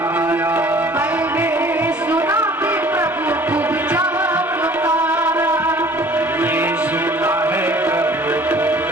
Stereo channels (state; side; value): normal; both; correlation 0.51